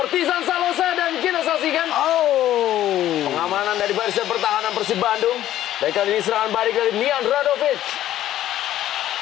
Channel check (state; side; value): quieter; right; 12.8 dB